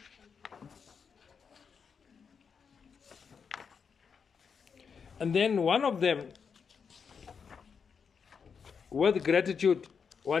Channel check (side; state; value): right; quieter; 6.2 dB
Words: And then one of them, with gratitude,